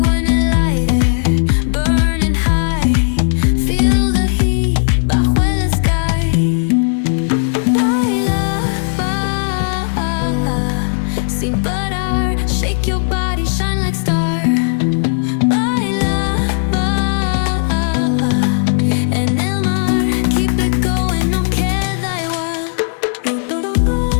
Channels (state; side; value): silent; right; digital silence